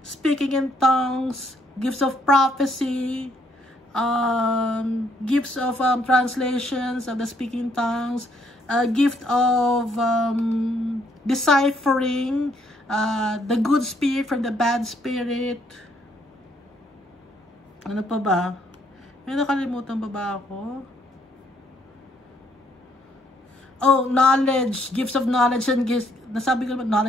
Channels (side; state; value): both; normal; correlation 0.69